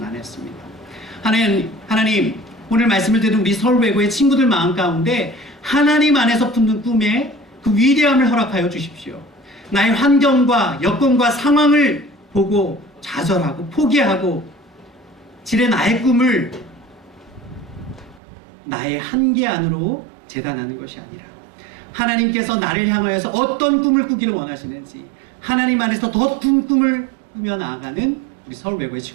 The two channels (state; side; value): drops out; left; at 18.2 s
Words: 하나님, 오늘 말씀을 듣는 우리 서울외고의 친구들 마음 가운데 하나님 안에서 품는 꿈에 그 위대함을 허락하여 주십시오. 나의 환경과 여건과 상황을 보고 좌절하고 포기하고 지레 나의 꿈을 나의 한계 안으로 재단하는 것이 아니라 하나님께서 나를 향하여서 어떤 꿈을 꾸기를 원하시는지 하나님 안에서 더 큰 꿈을 꾸며 나아가는 우리 서울외고의